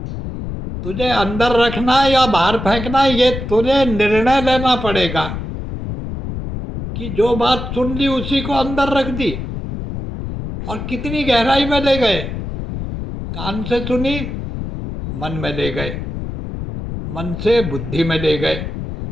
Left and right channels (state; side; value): noise; left; rumble, 6 dB below the sound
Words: तुझे अंदर रखना है या बाहर फेंकना है, ये तुझे निर्णय लेना पड़ेगा कि जो बात सुन ली उसी को अंदर रख दी। और कितनी गहराई में ले गए। कान से सुनी, मन में ले गए, मन से बुद्धि में ले गए,